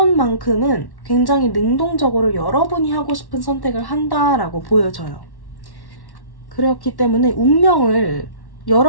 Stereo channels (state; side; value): late; right; 1.1 ms